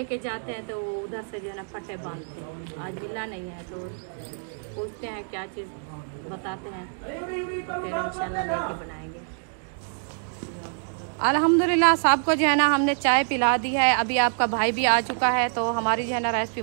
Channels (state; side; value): silent; left; 61 dB below the other